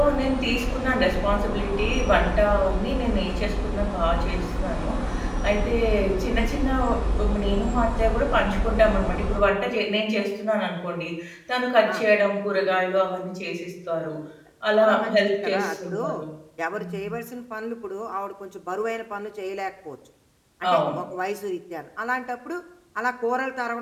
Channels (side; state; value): both; identical; correlation 1.00